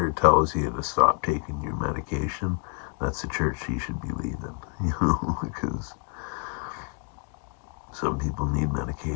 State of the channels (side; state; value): right; quieter; 33.2 dB